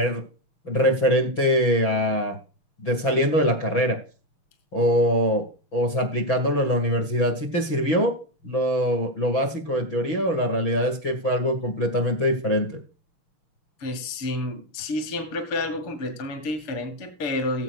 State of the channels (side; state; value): right; late; 6.1 ms